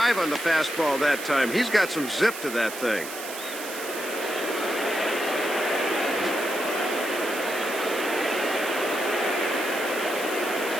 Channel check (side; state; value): right; noise; hiss, 10 dB below the sound